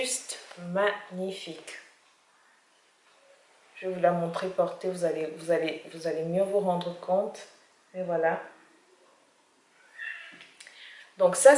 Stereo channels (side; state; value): both; identical; correlation 1.00